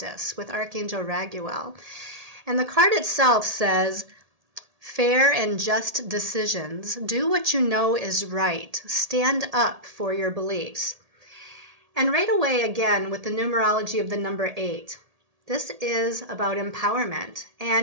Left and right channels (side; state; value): left; late; 1.8 ms